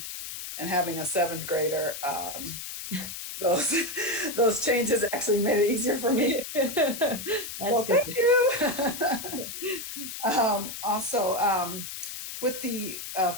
And having a 7th grader, those changes actually made it easier for me. That's Well, good. thank you. Also, with the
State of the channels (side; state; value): left; noise; hiss, 8 dB below the sound